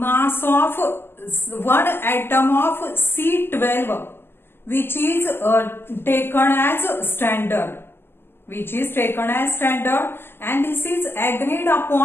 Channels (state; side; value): late; right; 0.11 ms